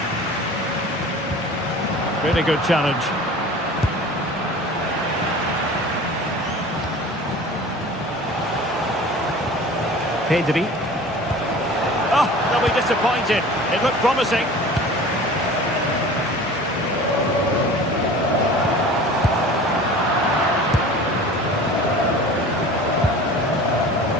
Really good challenge. Pedri. Oh, they'll be disappointed. It looked promising.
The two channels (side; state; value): both; normal; correlation 0.41